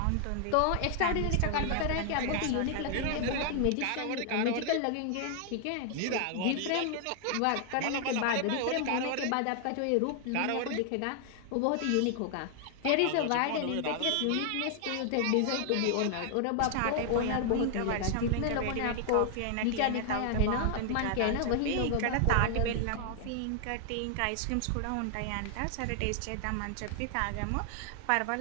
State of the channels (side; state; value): both; different; correlation 0.00